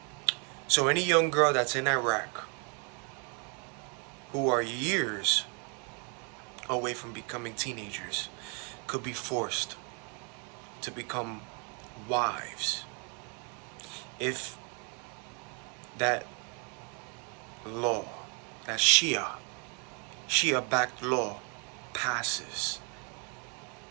So any young girl that's in Iraq who are years away from becoming teenagers could be forced to become wives if that law, that Shia-backed law passes.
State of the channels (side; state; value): left; quieter; 36.8 dB